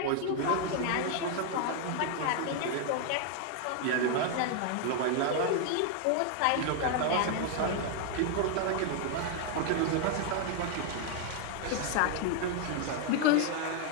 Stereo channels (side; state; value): both; different; correlation 0.00